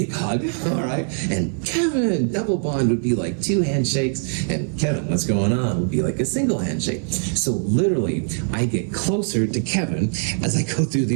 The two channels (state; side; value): silent; left; 59 dB below the other